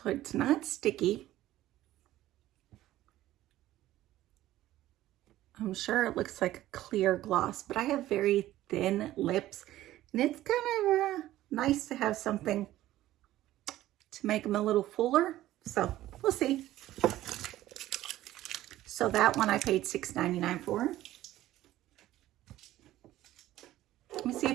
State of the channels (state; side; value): quieter; left; 14.7 dB